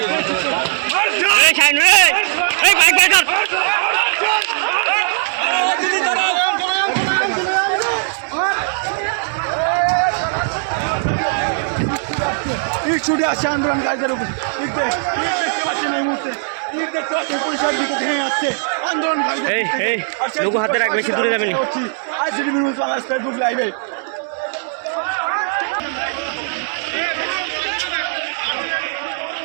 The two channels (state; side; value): silent; left; digital silence